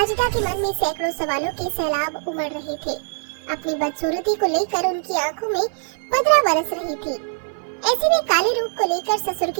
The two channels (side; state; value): left; silent; 57 dB below the other